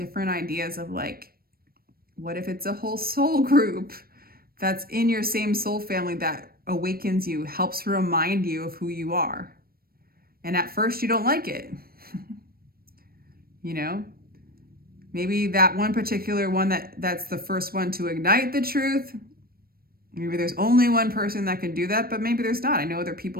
ideas of like, what if it's a whole soul group that's in your same soul family that awakens you, helps remind you of who you are. And at first you don't like it. You know, maybe that one particular one that's the first one to ignite the truth. Maybe there's only one person that can do that, but maybe there's not. I know there are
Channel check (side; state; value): left; late; 0.44 ms